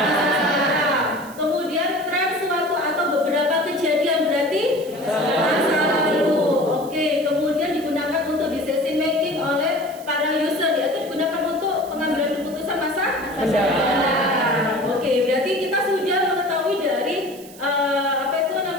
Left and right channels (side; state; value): right; noise; hiss, 20 dB below the sound